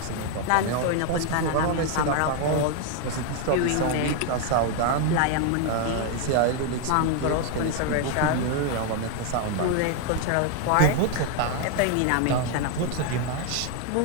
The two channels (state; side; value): different; both; correlation 0.01